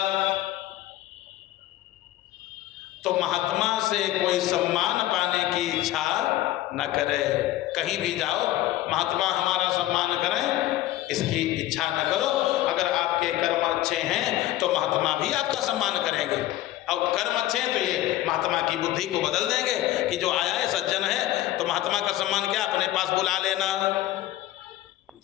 तो महात्मा से कोई सम्मान पाने की इच्छा न करे। कहीं भी जाओ, महात्मा हमारा सम्मान करें, इसकी इच्छा न करो। अगर आपके कर्म अच्छे हैं तो महात्मा भी आपका सम्मान करेंगे, और कर्म अच्छे हैं तो ये महात्मा की बुद्धि को बदल देंगे कि जो आया है सज्जन है, तो महात्मा का सम्मान क्या, अपने पास बुला लेना,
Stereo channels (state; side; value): quieter; right; 15.0 dB